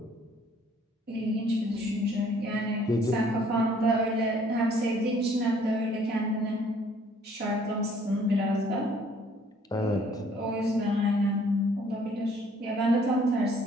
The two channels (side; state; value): both; normal; correlation 0.60